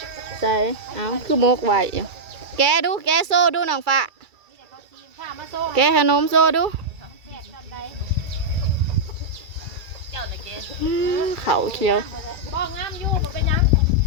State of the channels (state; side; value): late; left; 2.3 ms